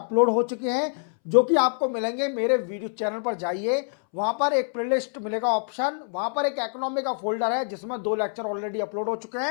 हो चुके हैं जो कि आपको मिलेंगे। मेरे वीडियो चैनल पर जाइए, वहां पर एक प्लेलिस्ट मिलेगा ऑप्शन, वहां पर एक इकोनॉमी का फोल्डर है जिसमें 2 लेक्चर ऑलरेडी अपलोड हो चुके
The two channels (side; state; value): right; silent; 61 dB below the other